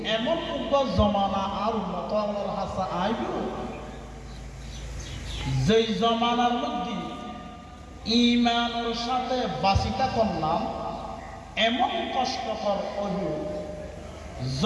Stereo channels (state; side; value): identical; both; correlation 1.00